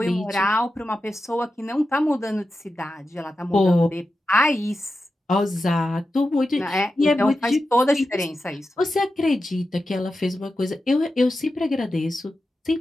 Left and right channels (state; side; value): normal; both; correlation 0.91